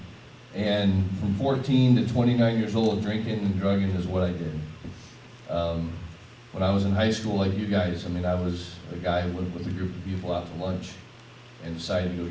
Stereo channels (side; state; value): both; identical; correlation 1.00